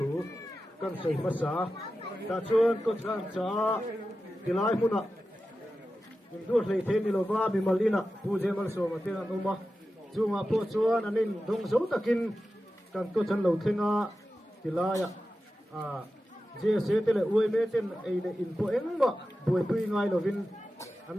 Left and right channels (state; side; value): normal; both; correlation 0.93